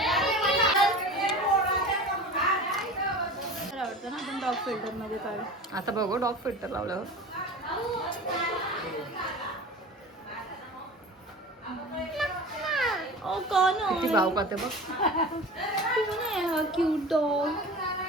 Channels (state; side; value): normal; both; correlation 0.35